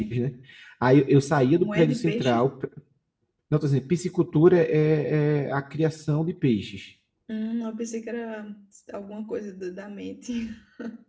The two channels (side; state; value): both; identical; correlation 1.00